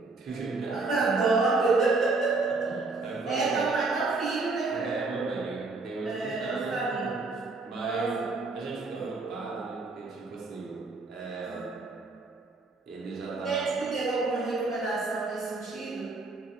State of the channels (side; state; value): left; quieter; 3.6 dB